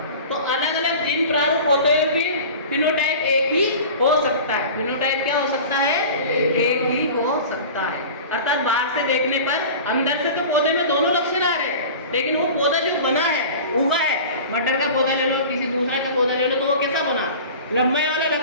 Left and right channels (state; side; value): inverted; both; correlation -0.37